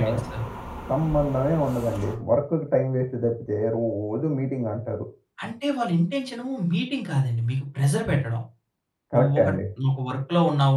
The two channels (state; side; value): identical; both; correlation 1.00